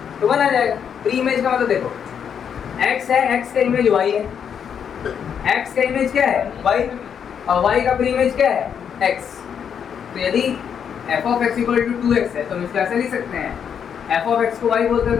तो बना जाएगा। प्री इमेज का मतलब देखो x है, x का इमेज y है, x का इमेज क्या है y, और y का प्री इमेज क्या है x। तो यदि f of x equal to 2x है तो हम इसको ऐसे लिख सकते हैं, f of x को y बोलते हैं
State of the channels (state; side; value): quieter; right; 7.8 dB